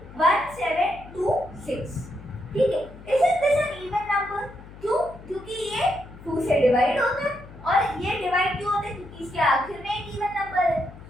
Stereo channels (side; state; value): left; noise; hum, 18 dB below the sound